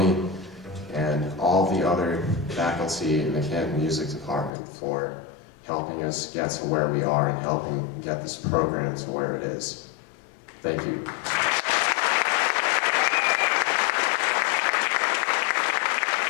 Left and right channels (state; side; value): drops out; right; at 4.5 s